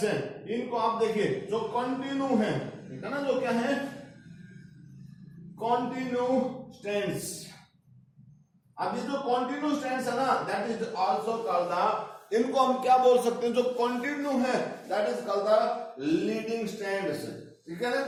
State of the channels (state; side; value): identical; both; correlation 1.00